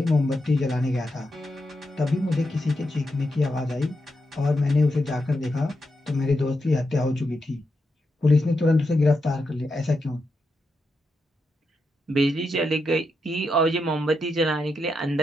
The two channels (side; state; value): both; normal; correlation 0.85